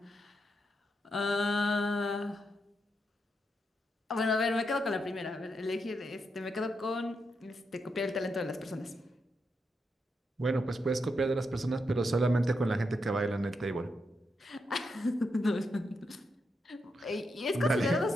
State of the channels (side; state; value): both; normal; correlation 0.83